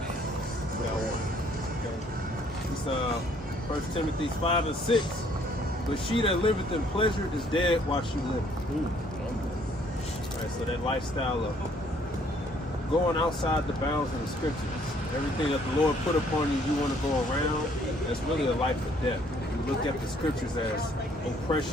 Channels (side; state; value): both; normal; correlation 0.63